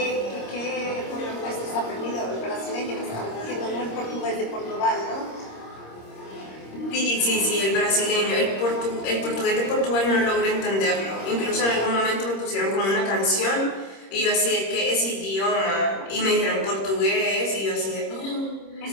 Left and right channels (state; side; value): late; right; 26 ms